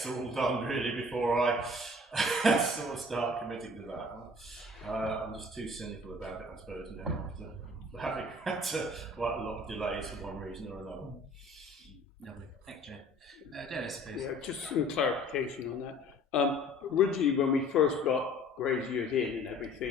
are all done really before I sort of start committing to that. I'm just too cynical about it, I suppose, now after having had quite a lot of delays for one reason or another. Lovely, thank you, Dennis, please. Yeah, just some clarification on that. Originally, when we first got Graziers in and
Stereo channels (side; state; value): both; normal; correlation 0.50